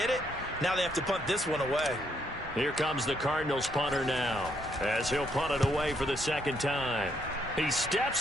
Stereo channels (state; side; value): normal; both; correlation 0.74